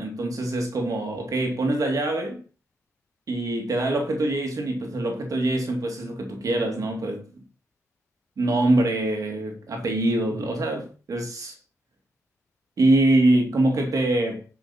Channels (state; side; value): normal; both; correlation 0.81